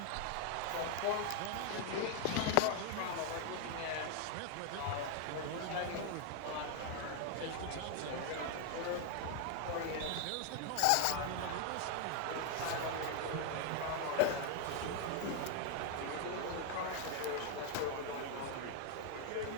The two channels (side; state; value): both; different; correlation 0.00